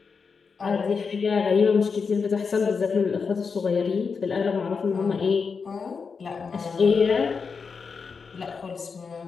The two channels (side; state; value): right; quieter; 5.4 dB